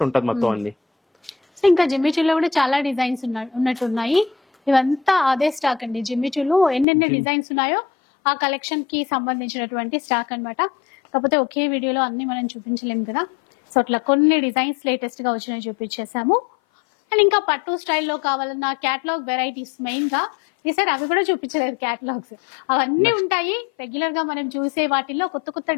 ఉంటుంది మొత్తం అన్ని. ఇంకా జిమ్మిచూలో కూడా చాలా డిజైన్స్ ఉన్నట్టున్నాయి. ఇవంతా అదే స్టాక్ అండి. జిమ్మిచూలో ఎన్నెన్ని డిజైన్స్ ఉన్నాయో ఆ కలెక్షన్ కి సంబంధించినటువంటి స్టాక్ అన్నమాట. కాకపోతే ఒకే వీడియోలో అన్ని మనం చూపించలేము కదా, సో అట్లా కొన్ని డిజైన్స్ లేటెస్ట్ గా వచ్చినాయి చూపించేసాము. అండ్ ఇంకా పట్టు స్టైల్లో కావాలన్న క్యాటలాగ్ వెరైటీస్ మెయిన్ గా ఈసారి అవి కూడా చూపించలేదు. క్యాటలాగ్స్ అవన్నీ ఉంటాయి. రెగ్యులర్ గా మనం చూసే వాటిల్లో కొత్త కొత్త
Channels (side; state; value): right; drops out; at 6.9 s